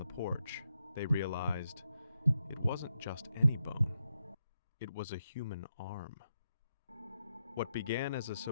porch, they realized it wasn't just any bone. It was a human arm. What began as a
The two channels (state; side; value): inverted; both; correlation -0.84